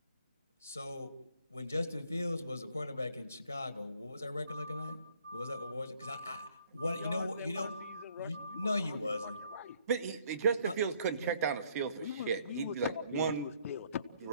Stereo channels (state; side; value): inverted; both; correlation -0.64